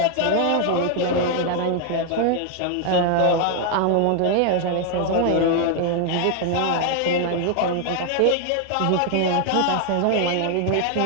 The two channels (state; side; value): different; both; correlation 0.00